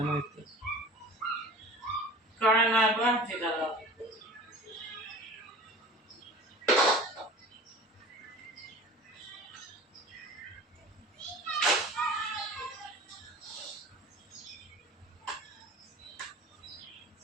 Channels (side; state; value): both; normal; correlation 0.39